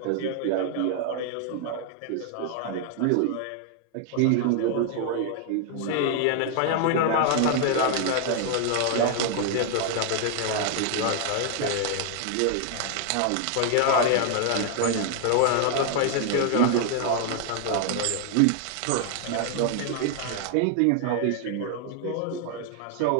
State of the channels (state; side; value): different; both; correlation 0.00